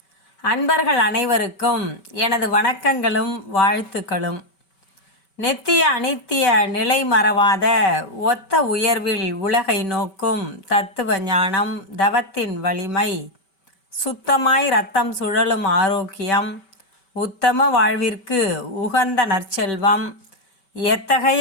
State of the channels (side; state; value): right; late; 5.2 ms